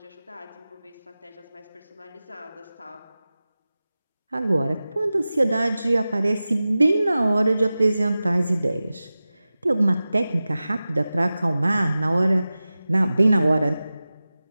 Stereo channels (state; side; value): inverted; both; correlation -0.95